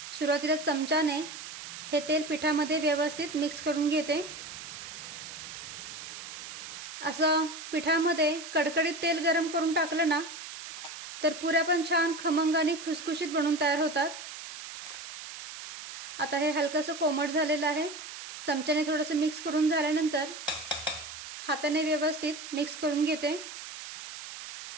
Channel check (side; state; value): right; noise; hiss, 11 dB below the sound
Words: सुरुवातीला चमच्याने हे तेल पिठामध्ये व्यवस्थित मिक्स करून घेते। असं पिठामध्ये कडकडीत तेल गरम करून टाकलं ना तर पुऱ्या पण छान खमंग आणि खुसखुशीत बनून तयार होतात। आता हे हलकसं कोमट झालेलं आहे। चमच्याने थोडंसं मिक्स करून झाल्यानंतर हाताने व्यवस्थित मिक्स करून घेते।